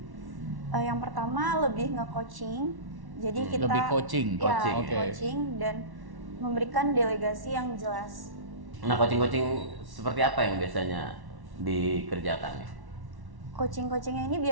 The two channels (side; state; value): left; late; 1.1 ms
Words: Yang pertama lebih nge-coaching. Jadi kita Lebih coaching. coaching dan memberikan delegasi yang jelas. Nah, coaching seperti apa yang biasanya dikerjakan? Coaching-coachingnya ini